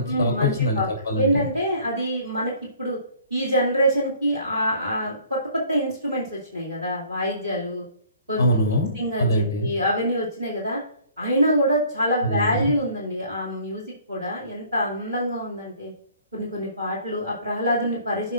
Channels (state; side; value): inverted; both; correlation -0.55